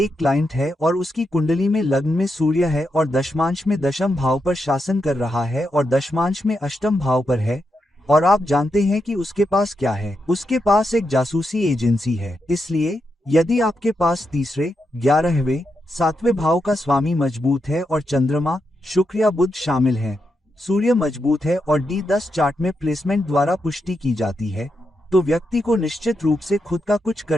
क्लाइंट है और उसकी कुंडली में लग्न में सूर्य है और दशमांश में दशम भाव पर शासन कर रहा है और दशमांश में अष्टम भाव पर है, और आप जानते हैं कि उसके पास क्या है? उसके पास एक जासूसी एजेंसी है। इसलिए यदि आपके पास तीसरे, 11वें, 7वें भाव का स्वामी मजबूत है और चंद्रमा, शुक्र या बुध शामिल हैं, सूर्य मजबूत है और D10 चार्ट में प्लेसमेंट द्वारा पुष्टि की जाती है, तो व्यक्ति को निश्चित रूप से खुद का कुछ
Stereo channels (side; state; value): both; normal; correlation 0.84